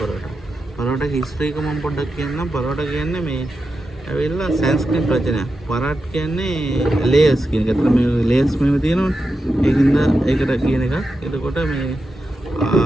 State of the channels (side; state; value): both; normal; correlation 0.89